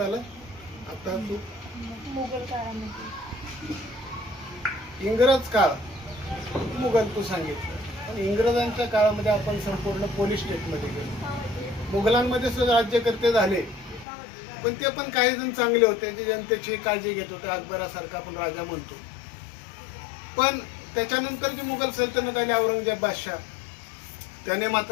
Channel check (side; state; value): right; drops out; at 14.1 s